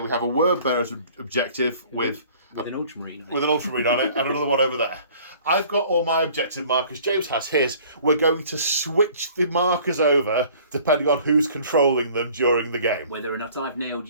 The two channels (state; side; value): inverted; both; correlation -0.51